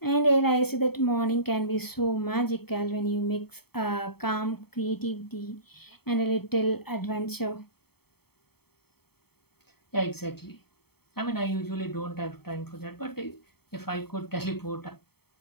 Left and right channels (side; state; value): right; late; 0.96 ms